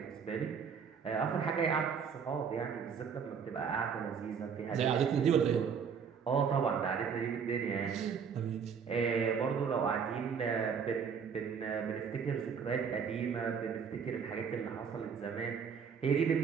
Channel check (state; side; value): quieter; left; 6.6 dB